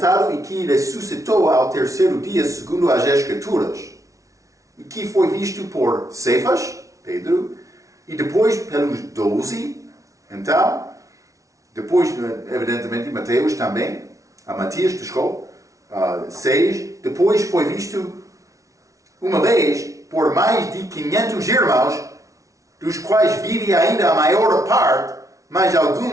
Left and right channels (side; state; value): left; late; 0.16 ms